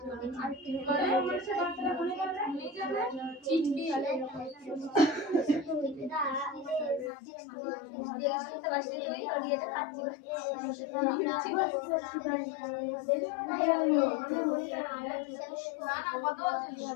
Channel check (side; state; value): right; drops out; at 7.1 s